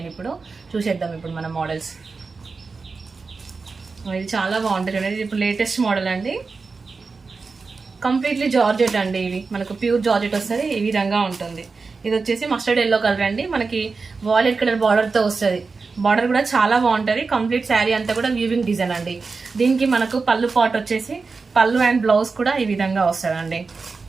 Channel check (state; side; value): quieter; left; 4.4 dB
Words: ఇప్పుడు చూసేద్దాం ఇప్పుడు మన మోడల్స్. ఇది చాలా బాగుంటుంది. ఇది ఇప్పుడు లేటెస్ట్ మోడల్ అండి. కంప్లీట్లీ జార్జెట్ అండి. ఇవి మనకు ప్యూర్ జార్జెట్ వస్తుంది. ఈ విధంగా ఉంటుంది. ఇది వచ్చేసి మస్టర్డ్ ఎల్లో కలర్ అండి. మనకి వాయిలెట్ కలర్ బార్డర్తో వస్తుంది. బార్డర్ కూడా చాలా బాగుంటుంది. కంప్లీట్ శారీ అంతా కూడా వీవింగ్ డిజైన్ అండి. దీనికి మనకు పళ్ళు పాట్ వచ్చేసి పళ్ళు అండ్ బ్లౌజ్ కూడా ఈ విధంగా వస్తుందండి.